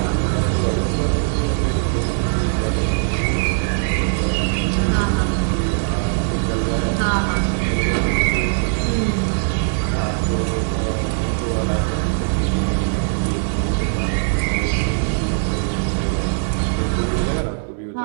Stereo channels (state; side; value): silent; left; 66 dB below the other